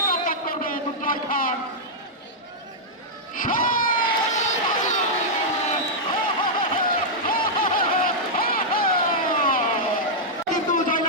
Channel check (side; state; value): both; normal; correlation -0.07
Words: কন্ট্যাক্ট করবে দুর্জয় খান। কিন্তু